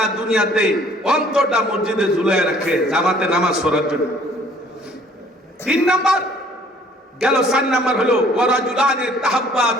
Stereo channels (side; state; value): both; normal; correlation 0.57